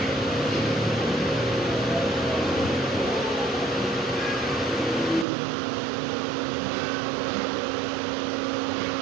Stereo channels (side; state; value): left; drops out; at 5.2 s